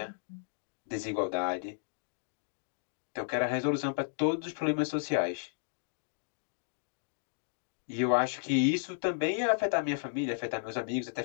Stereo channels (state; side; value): silent; right; digital silence